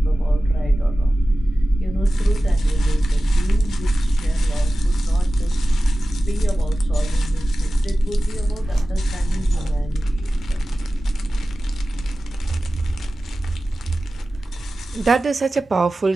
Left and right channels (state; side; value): normal; both; correlation 0.96